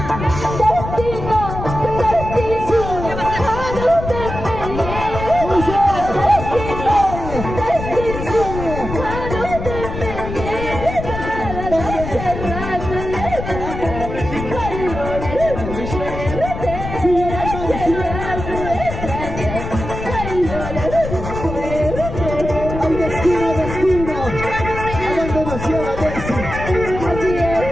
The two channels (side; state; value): left; noise; rumble, 7 dB below the sound